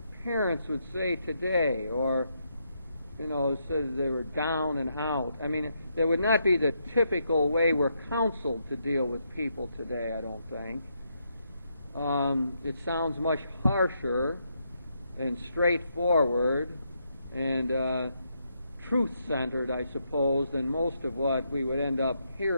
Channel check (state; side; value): inverted; both; correlation -0.79